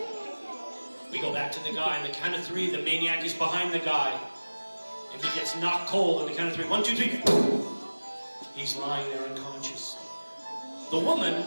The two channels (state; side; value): inverted; both; correlation -1.00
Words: We go back to the guy. On the count of 3, the maniac is behind the guy. And he gets knocked cold on the count of 3. 1, 2, 3. He's lying there unconscious. The